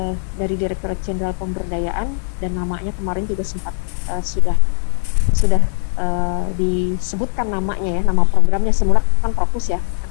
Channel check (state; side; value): silent; right; digital silence